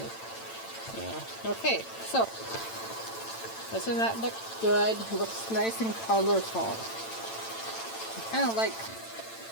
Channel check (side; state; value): right; late; 8.9 ms